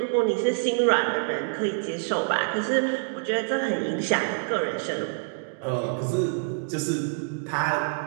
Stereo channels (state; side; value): silent; left; digital silence